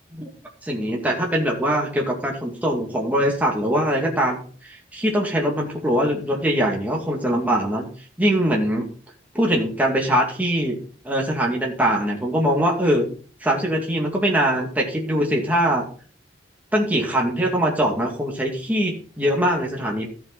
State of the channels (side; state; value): both; normal; correlation 0.54